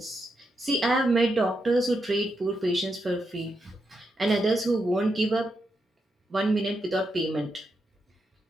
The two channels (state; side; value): normal; both; correlation 0.84